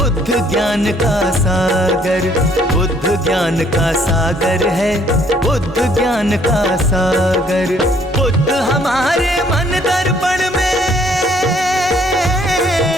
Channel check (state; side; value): normal; both; correlation 0.63